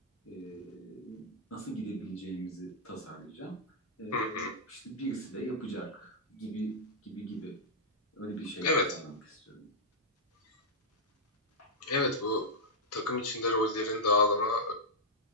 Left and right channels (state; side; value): normal; both; correlation -0.08